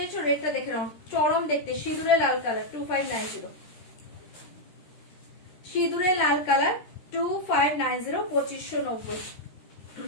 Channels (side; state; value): right; late; 13 ms